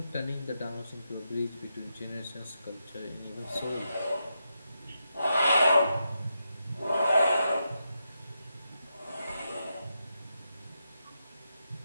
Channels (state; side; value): inverted; both; correlation -0.85